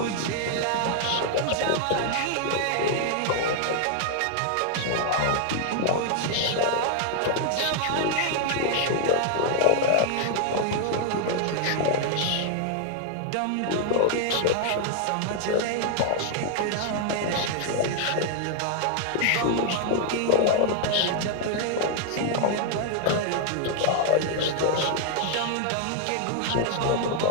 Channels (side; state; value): both; different; correlation 0.00